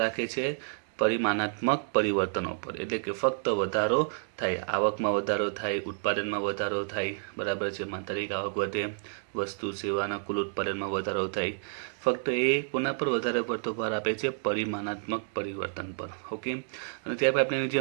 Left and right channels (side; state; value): left; silent; digital silence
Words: રાખે છે? પરિમાણાત્મક પરિવર્તનો પર. એટલે કે ફક્ત વધારો થાય, આવકમાં વધારો થાય, ઉત્પાદનમાં વધારો થાય, બરાબર છે, માત્રાત્મક આવક વધે, વસ્તુ સેવાના કુલ ઉત્પાદનમાં વધારો થાય. ફક્ત એ કોના પર વધારે પડતો ભાર આપે છે? પરિમાણાત્મક પરિવર્તન પર. ઓકે. અને ત્યારબાદ આપણે જે